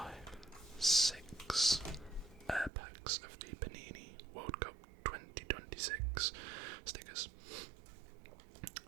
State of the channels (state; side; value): drops out; left; at 2.7 s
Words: 6 packs of the Panini World Cup 2026 stickers